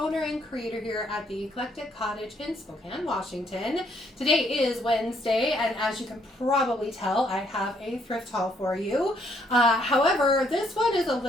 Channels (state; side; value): normal; both; correlation 0.70